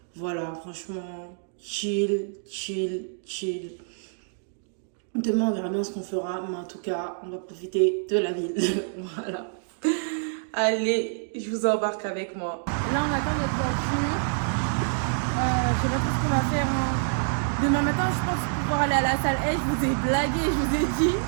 voilà, franchement, chill. Demain, on verra bien ce qu'on fera, mais en tout cas, on va profiter de la ville. Voilà. Allez, je vous embarque avec moi. Là, on attend notre voiture. Je sais pas trop ce qu'on va faire. Hein. Demain matin, je pense pouvoir aller à la salle. Je vous ai blagué, je vous ai dit.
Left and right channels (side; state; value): left; silent; digital silence